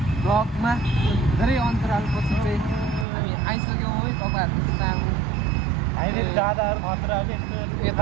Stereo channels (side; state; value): left; drops out; at 3.1 s